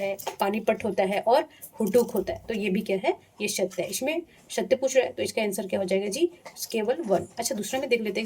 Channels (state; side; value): identical; both; correlation 1.00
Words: पानीपट होता है और हुडुक होता है। तो ये भी क्या है, ये सत्य है। इसमें सत्य पूछ रहा है तो इसका आंसर क्या हो जाएगा जी, केवल 1। अच्छा, दूसरा में देख लेते हैं,